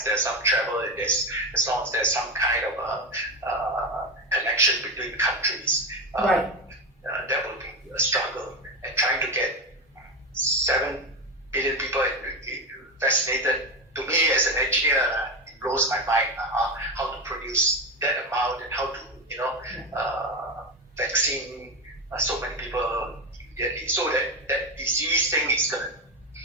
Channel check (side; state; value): both; normal; correlation 0.16